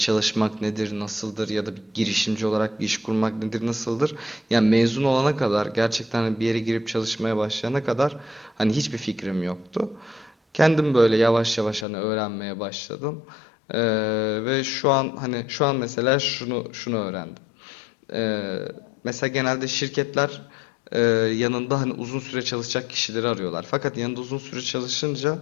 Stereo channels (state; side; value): drops out; right; at 11.9 s